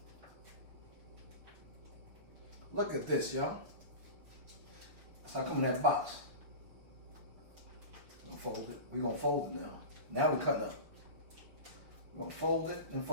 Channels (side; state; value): left; late; 6.5 ms